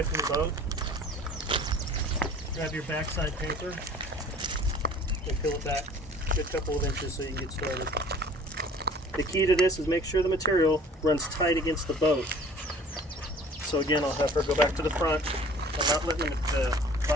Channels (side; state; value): both; normal; correlation 0.49